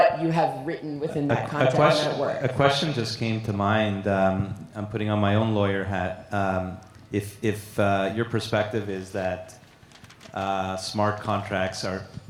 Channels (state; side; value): identical; both; correlation 1.00